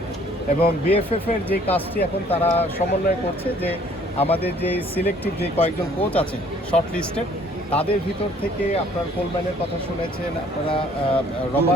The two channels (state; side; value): normal; both; correlation 0.58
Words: এবং বিএফএফ এর যে কাজটি এখন তারা সমন্বয় করছে যে আমাদের যে সিলেক্টিভ যে কয়েকজন কোচ আছে শর্ট লিস্টেড, তাদের ভিতর থেকে আপনার কোলম্যানের কথা শুনেছেন, আপনারা